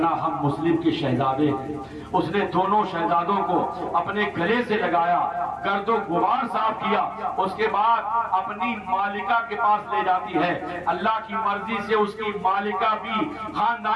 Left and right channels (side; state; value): both; identical; correlation 1.00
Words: ہم مسلم کے شہزادے ہیں۔ اس نے دونوں شہزادوں کو اپنے گلے سے لگایا، گرد و غبار صاف کیا، اس کے بعد اپنی مالکہ کے پاس لے جاتی ہے۔ اللہ کی مرضی سے اس کی مالکہ بھی